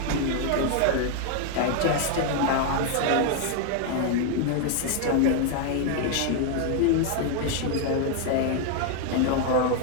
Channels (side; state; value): both; different; correlation 0.00